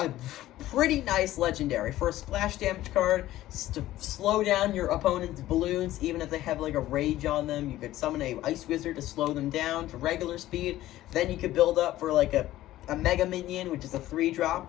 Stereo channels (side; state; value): right; quieter; 14.9 dB